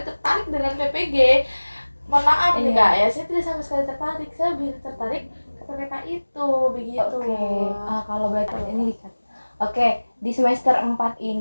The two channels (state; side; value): inverted; both; correlation -1.00